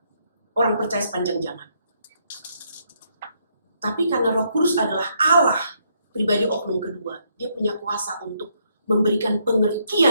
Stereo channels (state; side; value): inverted; both; correlation -0.73